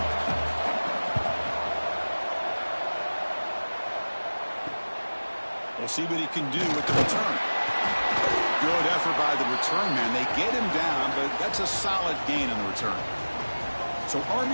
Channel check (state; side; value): inverted; both; correlation -1.00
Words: We'll see what he can do with the return. Good effort by the return man. They get him down, but that's a solid gain in the return. So